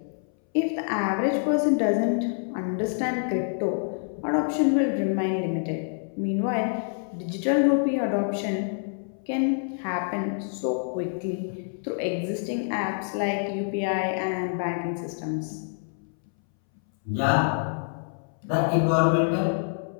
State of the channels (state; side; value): silent; right; 60 dB below the other